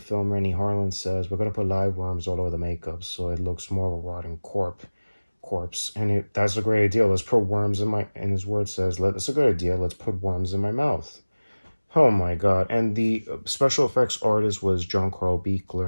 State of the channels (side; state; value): both; inverted; correlation -1.00